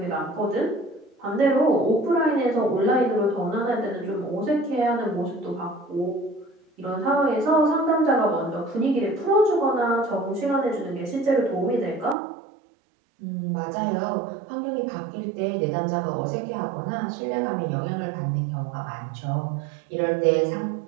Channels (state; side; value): drops out; left; at 12.2 s